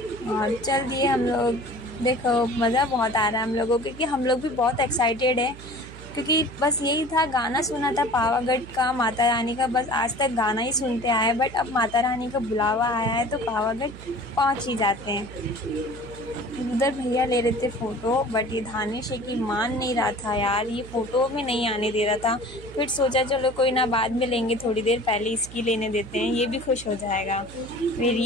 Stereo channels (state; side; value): noise; right; hum, 16 dB below the sound